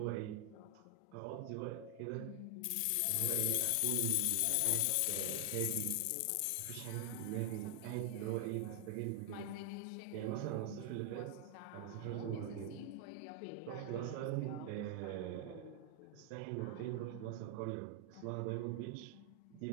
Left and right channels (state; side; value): different; both; correlation 0.00